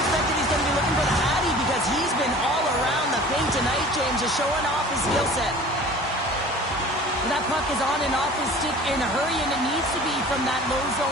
just showing off his skill set. That puck is on and off his stick in a hurry, and it needs to be from that low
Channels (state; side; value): normal; both; correlation 0.44